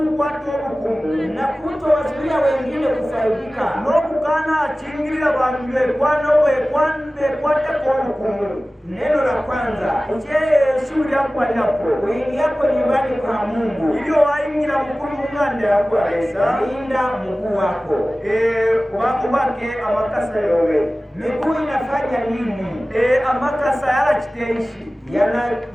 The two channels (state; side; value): normal; both; correlation 0.97